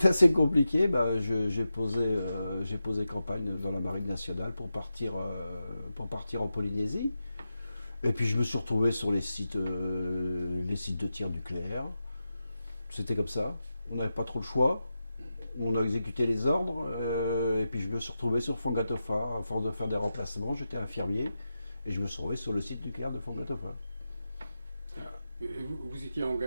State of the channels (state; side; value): inverted; both; correlation -0.91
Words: assez compliqué. Bah, j'ai posé campagne dans la Marine nationale pour partir en Polynésie. Et puis je me suis retrouvé sur les sites de tir nucléaire. C'était comme ça. On n'avait pas trop le choix. On a exécuté les ordres. Et puis je me suis retrouvé sur Fongatofa. À force de faire des remplacements, j'étais infirmier. Et je me suis retrouvé sur le site nucléaire de Fongatofa. Vous étiez